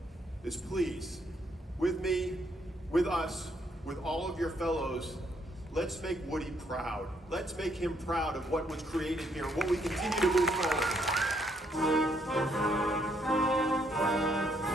is please, with me, with us, with all of your fellows, let's make Woody proud. Let's make him proud of what was created here, what we continue to move forward.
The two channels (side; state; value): both; normal; correlation 0.71